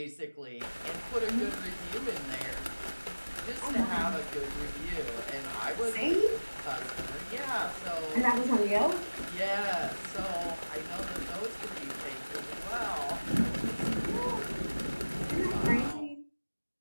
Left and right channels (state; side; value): inverted; both; correlation -1.00